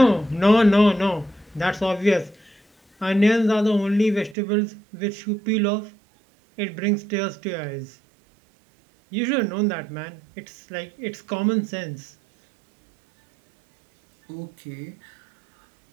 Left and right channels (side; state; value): left; drops out; at 4.4 s